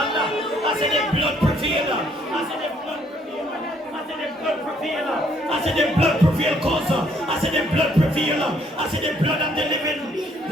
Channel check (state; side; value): normal; both; correlation 0.66